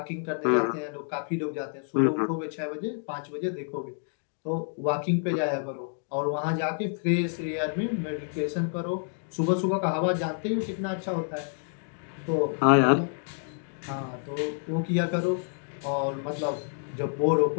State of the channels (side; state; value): right; silent; 58 dB below the other